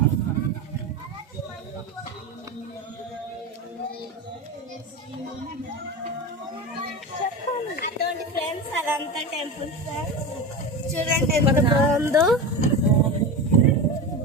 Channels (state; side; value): normal; both; correlation 0.23